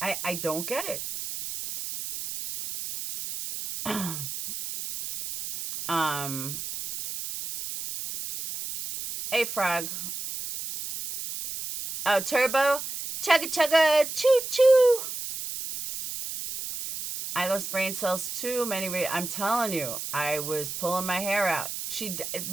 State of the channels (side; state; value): right; noise; hiss, 7 dB below the sound